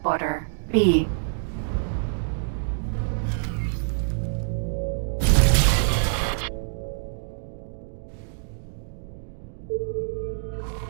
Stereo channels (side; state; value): left; silent; digital silence